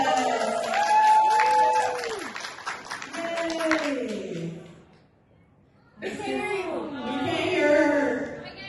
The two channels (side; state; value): both; identical; correlation 1.00